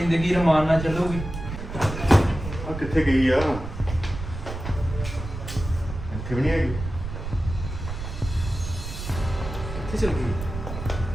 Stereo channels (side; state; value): right; noise; rumble, 8 dB below the sound